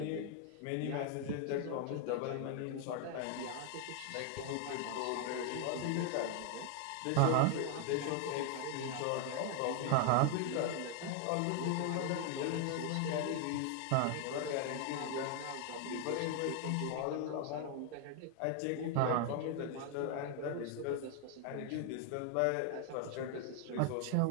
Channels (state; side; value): different; both; correlation 0.00